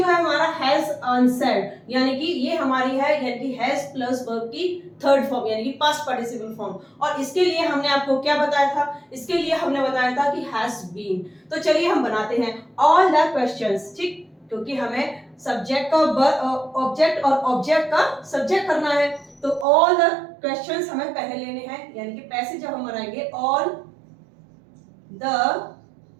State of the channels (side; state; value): left; drops out; at 19.7 s